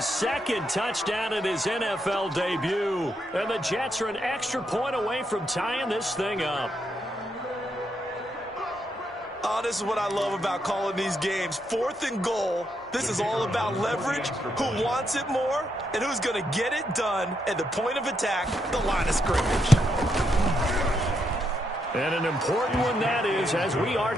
2nd touchdown in his NFL debut. And the Jets are an extra point away from tying this thing up. Oh, this is what I love about calling these games. 4th and goal. This is all about leverage, who wants it more, and who's going to get it done at the point of attack, the line of scrimmage. And an important one that is, as we are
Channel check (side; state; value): both; normal; correlation 0.79